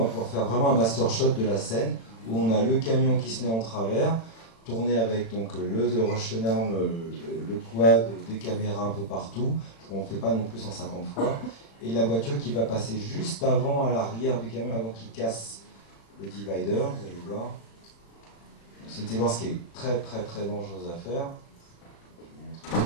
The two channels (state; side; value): late; right; 35 ms